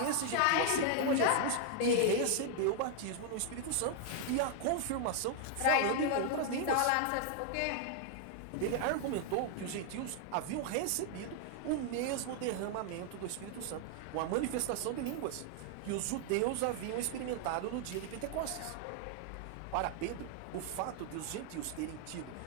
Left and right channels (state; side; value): different; both; correlation 0.00